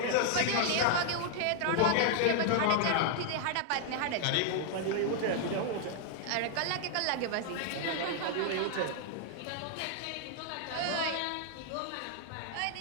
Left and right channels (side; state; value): both; different; correlation -0.01